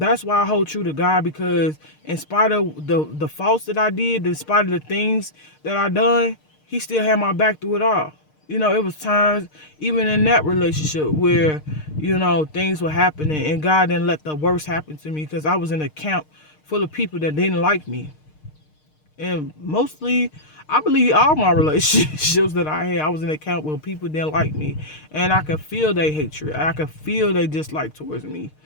why I hold true to God, because in spite of the faults that I did, in spite of the things that I done, he still had my back through it all. It was times, even in that relationship, where, things were happening and God didn't let the worst happen to me, because I was in a camp full of people that didn't like me. And mostly, I believe all my relationships that I had, I was in a camp where people didn't like me. And I could feel their hatred. I could feel their dislike towards me.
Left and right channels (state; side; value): late; right; 6.5 ms